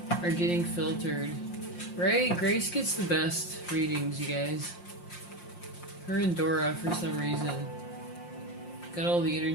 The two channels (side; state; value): right; late; 5.7 ms